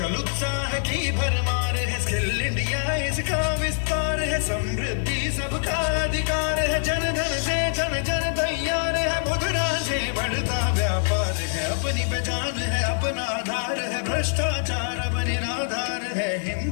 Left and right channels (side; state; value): right; silent; digital silence